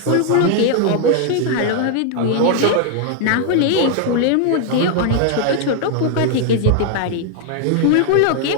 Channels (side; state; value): both; different; correlation 0.00